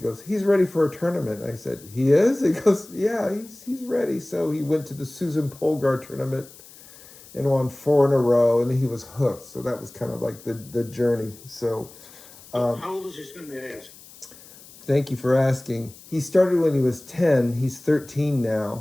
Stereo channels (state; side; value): noise; left; hiss, 21 dB below the sound